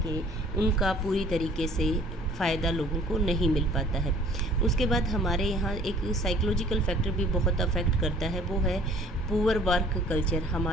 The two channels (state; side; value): normal; both; correlation 0.54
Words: उनका पूरी तरीके से फ़ायदा लोगों को नहीं मिल पाता है। उसके बाद हमारे यहाँ एक साइकोलॉजिकल फैक्टर भी बहुत अफेक्ट करता है, वो है पुअर वर्क कल्चर।